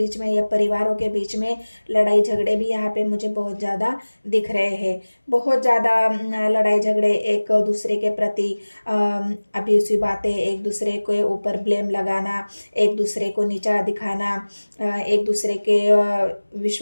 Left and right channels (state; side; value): inverted; both; correlation -1.00